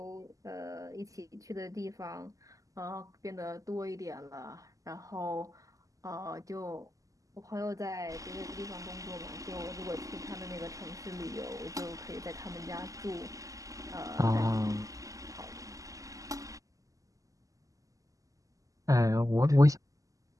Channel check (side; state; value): left; late; 0.16 ms